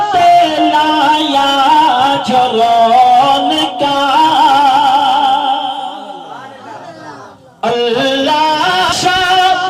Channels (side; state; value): both; identical; correlation 1.00